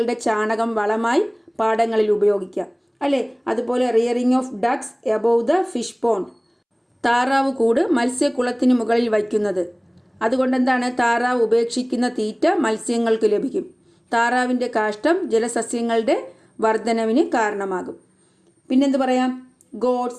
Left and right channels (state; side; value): identical; both; correlation 1.00